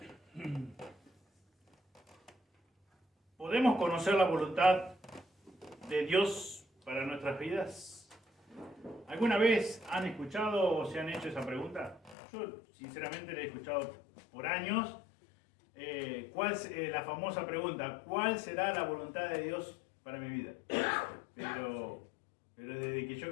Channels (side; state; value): right; drops out; at 12.2 s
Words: ¿Podemos conocer la voluntad de Dios para nuestras vidas? ¿Alguna vez han escuchado o se han hecho esa pregunta? Yo sinceramente la he escuchado por años. La famosa pregunta, ¿cuál será la voluntad de Dios para mi vida? Pero desde que yo